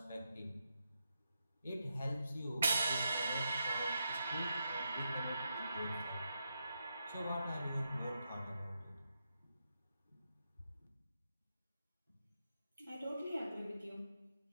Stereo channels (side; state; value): both; inverted; correlation -0.85